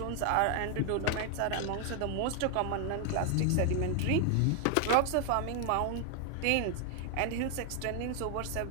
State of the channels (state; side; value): different; both; correlation 0.00